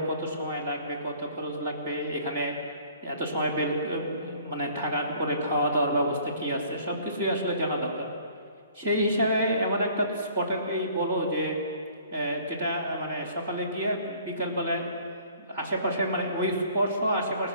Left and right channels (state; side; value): inverted; both; correlation -0.55